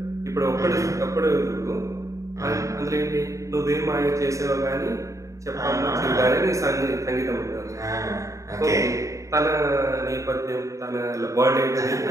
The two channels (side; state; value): left; late; 0.15 ms